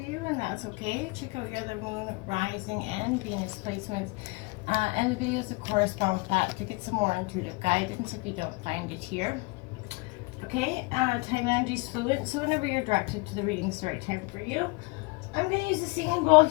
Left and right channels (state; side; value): quieter; right; 26.7 dB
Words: you, and that's okay. Check out your other Moon, Rising, and Venus placements and the videos that correspond with that to get some more intuitive guidance if you don't find it here. Okay, time energy is fluid, so whenever you're directed to the reading, it's the right time for you. I'm going to use the singing bowl